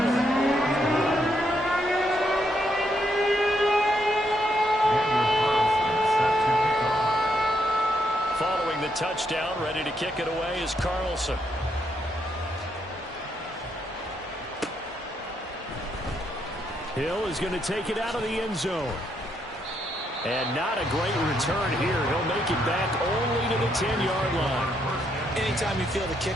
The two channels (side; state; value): both; normal; correlation 0.76